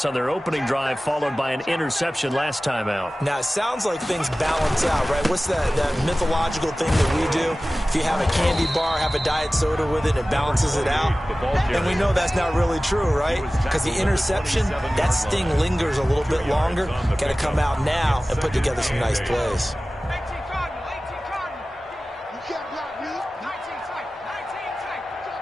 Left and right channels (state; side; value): normal; both; correlation 0.97